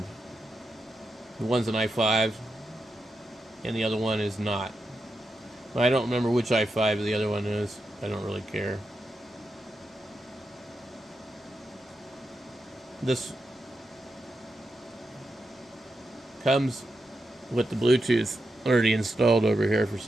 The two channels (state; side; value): normal; both; correlation 0.87